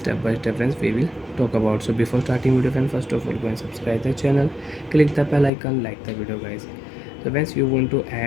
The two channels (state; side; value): drops out; right; at 5.5 s